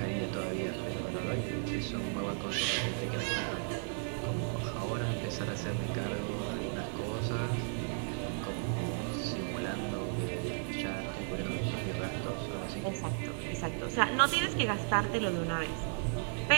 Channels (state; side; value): silent; left; 55 dB below the other